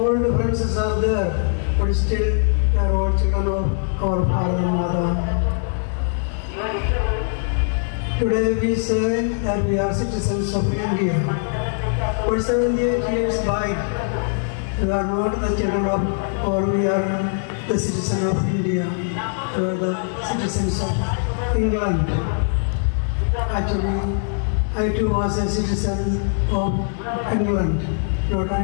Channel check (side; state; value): right; silent; digital silence